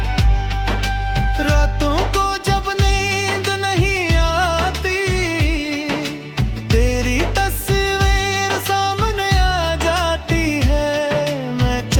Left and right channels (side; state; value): both; identical; correlation 1.00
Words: रातों को जब नींद नहीं आती, तेरी तस्वीर सामने आ जाती है। मैं